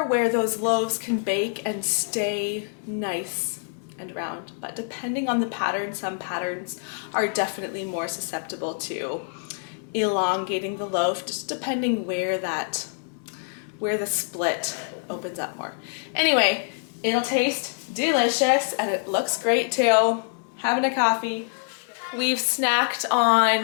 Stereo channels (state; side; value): silent; right; digital silence